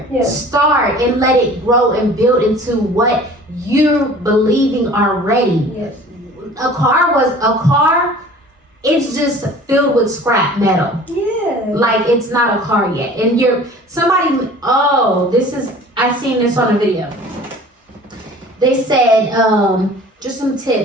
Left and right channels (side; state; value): both; normal; correlation 0.46